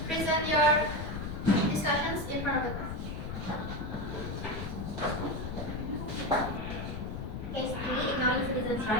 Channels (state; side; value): noise; left; rumble, 6 dB below the sound